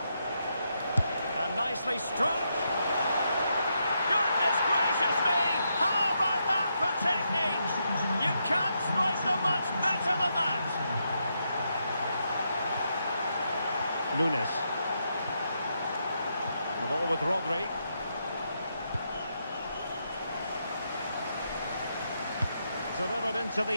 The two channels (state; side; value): inverted; both; correlation -0.81